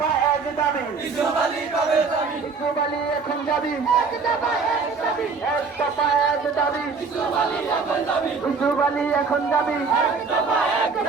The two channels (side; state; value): left; quieter; 4.9 dB